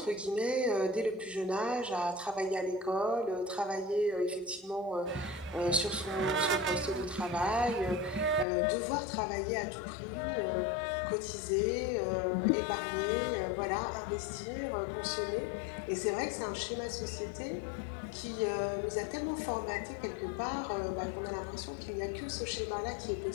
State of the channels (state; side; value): drops out; right; at 8.5 s